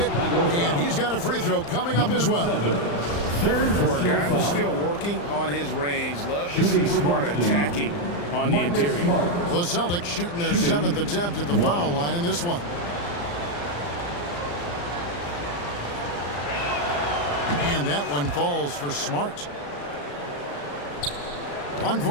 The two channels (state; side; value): late; right; 35 ms